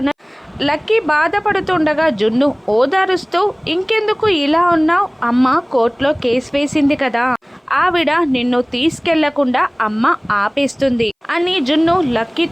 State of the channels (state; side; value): identical; both; correlation 1.00